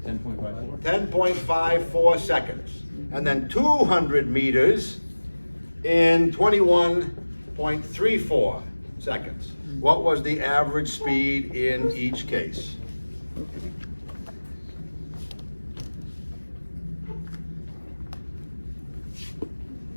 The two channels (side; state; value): both; inverted; correlation -1.00